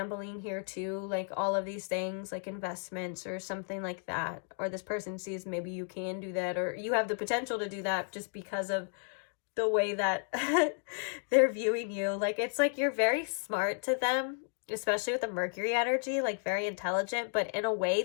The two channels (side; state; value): right; silent; 56 dB below the other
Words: here too, like all of these things like investments or something like that, or this person sees maybe you can do that, or you have the potential to do that just because of the way that they're viewing you. Like, it's like you're very smart to them, especially with the Mercury energy, like very intelligent, but in a way